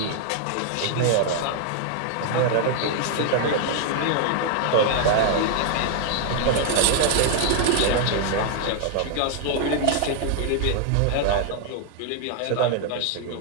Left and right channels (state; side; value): different; both; correlation 0.00